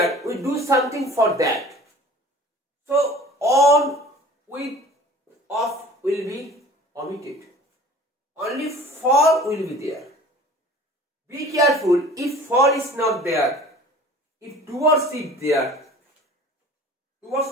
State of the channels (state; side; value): normal; both; correlation 0.45